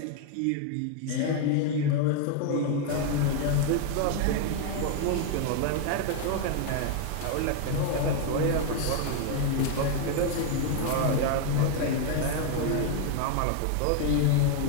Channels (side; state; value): both; different; correlation 0.01